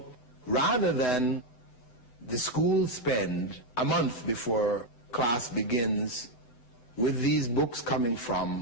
rather than the school spend a month before class begins with these books coming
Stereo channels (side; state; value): right; late; 7.9 ms